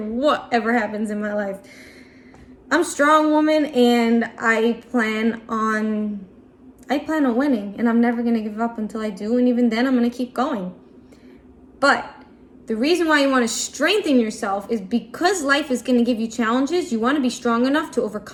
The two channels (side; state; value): both; identical; correlation 1.00